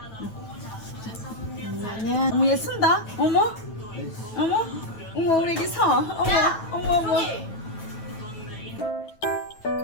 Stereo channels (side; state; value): right; late; 9.6 ms